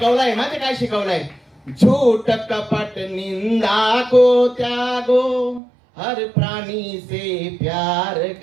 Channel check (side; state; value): left; drops out; at 5.6 s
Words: ना. ते काय शिकवलंय? झूठ कपट निंदा को त्यागो, हर प्राणी से प्यार